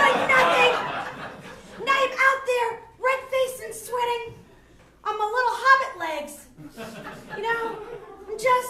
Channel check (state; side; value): identical; both; correlation 1.00